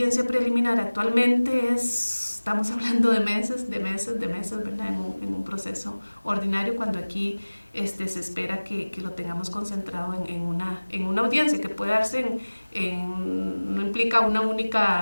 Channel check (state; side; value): inverted; both; correlation -1.00